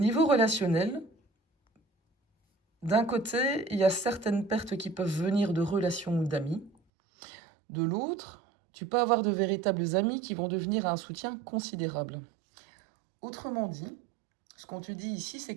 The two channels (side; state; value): left; drops out; at 6.7 s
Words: relationnel, d'un côté, il y a certaines pertes qui peuvent venir de relations ou d'amis. De l'autre, tu peux avoir de véritables amis qui vont devenir un soutien considérable. Autrement dit, ce qu'on te dit ici, c'est